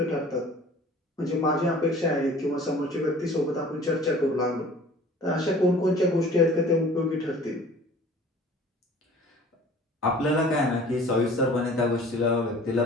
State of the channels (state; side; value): normal; both; correlation 0.47